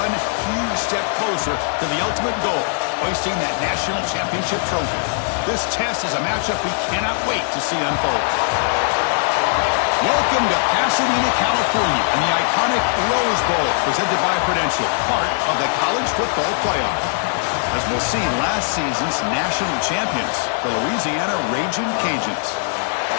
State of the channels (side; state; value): right; silent; 66 dB below the other